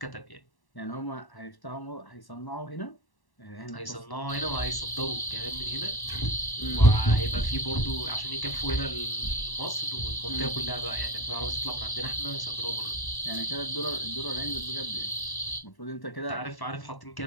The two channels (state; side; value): late; right; 1.1 ms